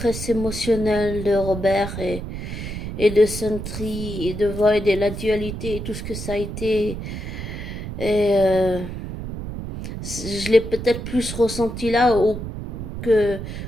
émotionnelle de Robert et de Sentry et de Void et la dualité et tout ce que ça a été. Et je l'ai peut-être plus ressenti là que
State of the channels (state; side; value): noise; right; rumble, 7 dB below the sound